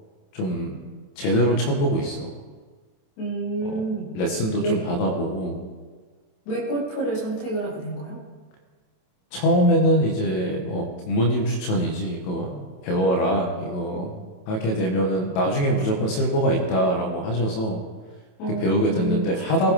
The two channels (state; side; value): late; right; 27 ms